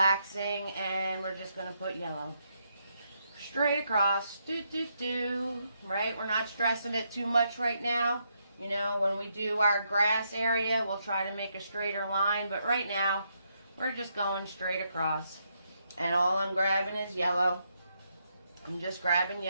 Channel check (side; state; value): both; inverted; correlation -0.78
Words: And we're just going to put yellow straight across. Right? We're not stressing it too much right now. You know, when we do our grass area, we'll try to make a straighter line. But right now, we're just going straight across. And all I'm grabbing is yellow. I'm just grabbing